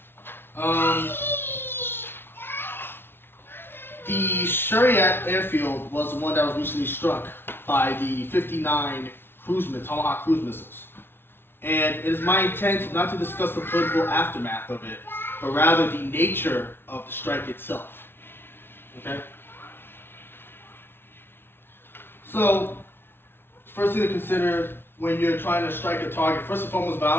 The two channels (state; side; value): late; right; 0.11 ms